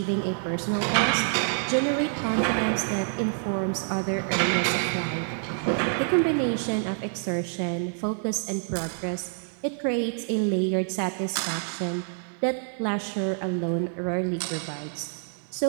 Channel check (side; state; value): left; silent; 60 dB below the other